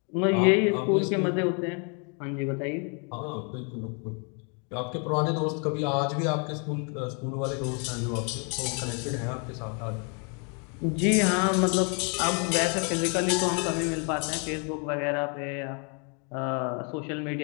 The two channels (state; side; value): quieter; right; 37.5 dB